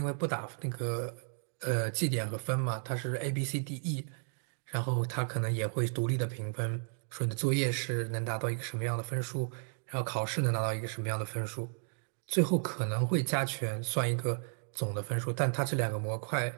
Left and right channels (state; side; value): silent; left; 55 dB below the other